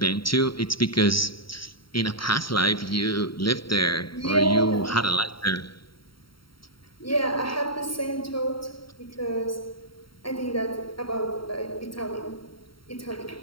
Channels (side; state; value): right; late; 0.73 ms